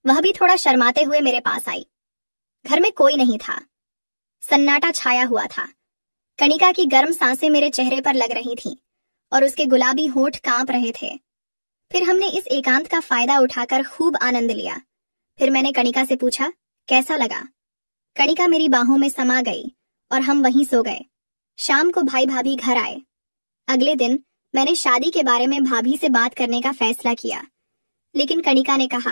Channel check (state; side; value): inverted; both; correlation -1.00